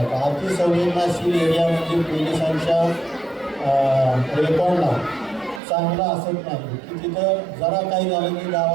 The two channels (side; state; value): left; drops out; at 5.6 s